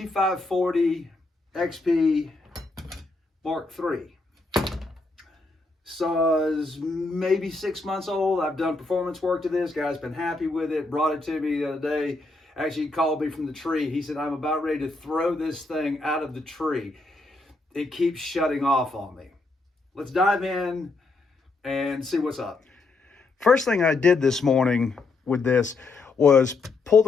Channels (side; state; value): right; quieter; 3.4 dB